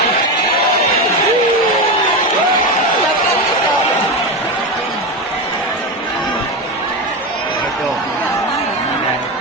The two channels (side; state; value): both; normal; correlation 0.17